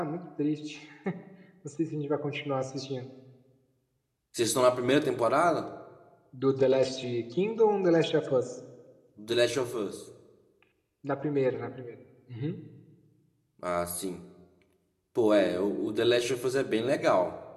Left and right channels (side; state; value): both; identical; correlation 1.00